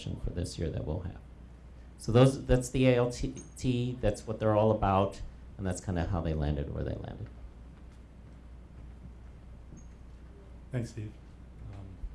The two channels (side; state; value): both; identical; correlation 1.00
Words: for this year that we'll have. So that's the ALT, that's what they're all about, and that's kind of how they landed where they landed. Thanks, Steve.